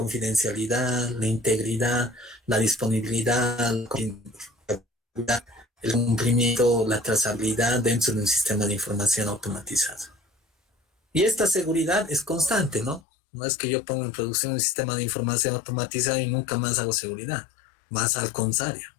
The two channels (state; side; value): drops out; right; at 13.0 s